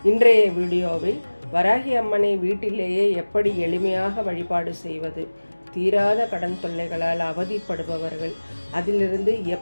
இன்றைய வீடியோவில் வராகி அம்மனை வீட்டிலேயே எப்படி எளிமையாக வழிபாடு செய்வது, தீராத கடன் தொல்லைகளால் அவதிப்படுபவர்கள் அதிலிருந்து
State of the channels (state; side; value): inverted; both; correlation -1.00